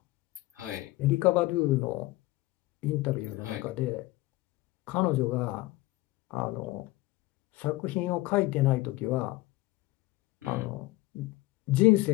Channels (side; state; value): right; quieter; 19.0 dB